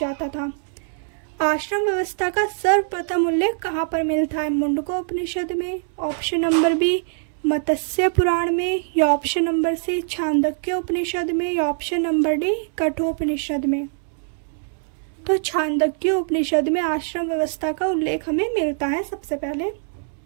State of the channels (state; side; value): silent; left; digital silence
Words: था। आश्रम व्यवस्था का सर्वप्रथम उल्लेख कहाँ पर मिलता है? मुंडकोपनिषद में, ऑप्शन नंबर बी मत्स्य पुराण में, या ऑप्शन नंबर सी छांदोग्य उपनिषद में, या ऑप्शन नंबर डी कठोपनिषद में। तो छांदोग्य उपनिषद में आश्रम व्यवस्था का उल्लेख हमें मिलता है सबसे पहले।